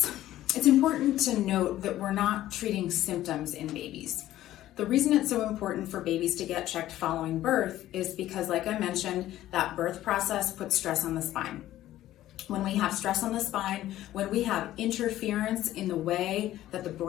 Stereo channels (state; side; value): quieter; right; 14.0 dB